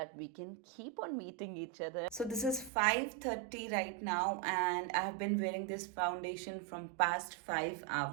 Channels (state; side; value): drops out; left; at 2.7 s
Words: we can keep on meeting each other. So this is 5:30 right now and I have been wearing this foundation from past 5